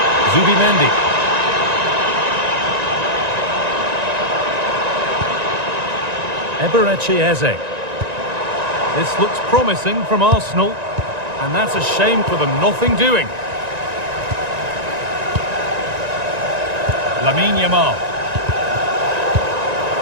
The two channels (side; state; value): left; late; 1.9 ms